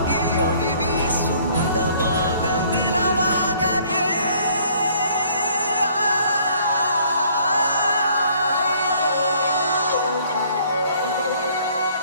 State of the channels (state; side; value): inverted; both; correlation -0.59